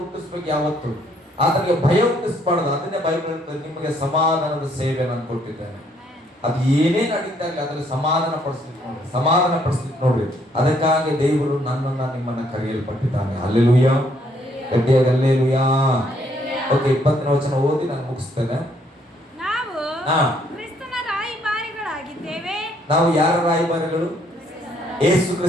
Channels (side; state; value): both; normal; correlation 0.68